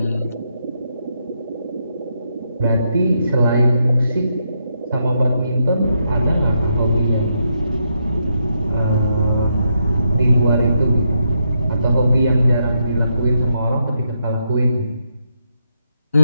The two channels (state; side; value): inverted; both; correlation -0.80